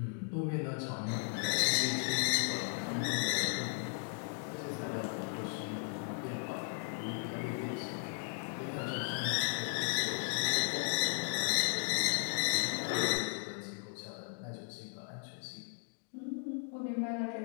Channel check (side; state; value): right; silent; 54 dB below the other